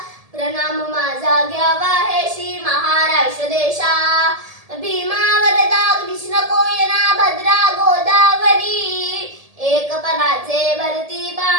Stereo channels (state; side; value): late; left; 1.7 ms